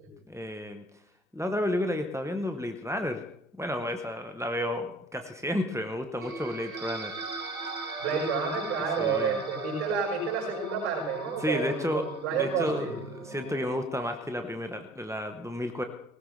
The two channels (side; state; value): both; normal; correlation 0.51